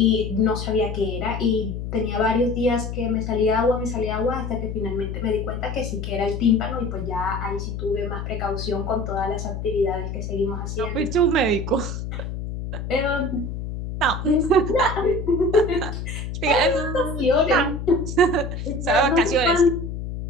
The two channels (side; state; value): left; noise; hum, 6 dB below the sound